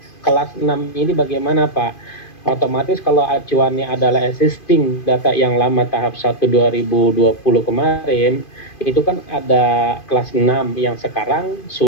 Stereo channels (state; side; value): late; right; 2.5 ms